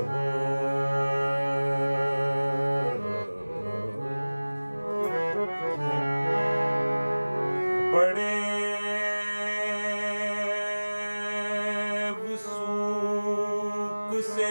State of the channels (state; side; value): inverted; both; correlation -1.00